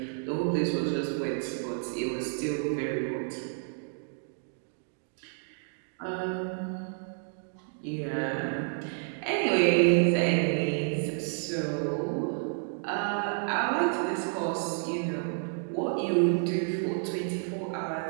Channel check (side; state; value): left; silent; 58 dB below the other